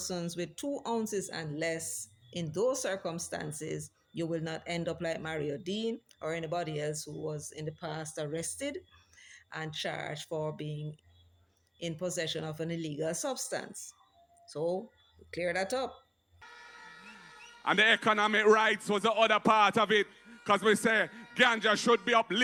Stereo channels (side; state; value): both; identical; correlation 1.00